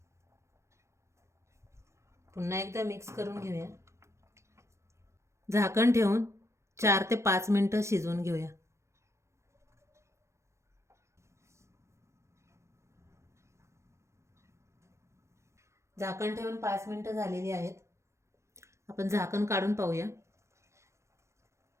पुन्हा एकदा मिक्स करून घेऊया. झाकण ठेवून 4 ते 5 मिनिटं शिजवून घेऊया. झाकण ठेवून 5 मिनिटं झालेली आहेत. आपण झाकण काढून पाहूया.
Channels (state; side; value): late; left; 0.14 ms